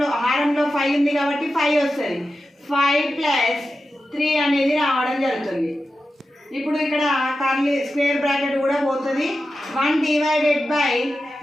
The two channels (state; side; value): normal; both; correlation 0.91